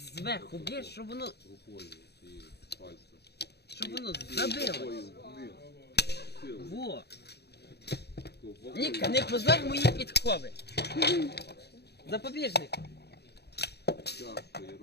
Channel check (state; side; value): late; right; 0.48 ms